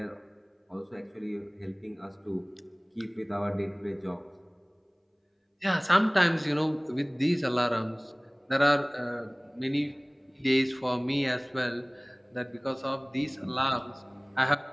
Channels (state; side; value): identical; both; correlation 1.00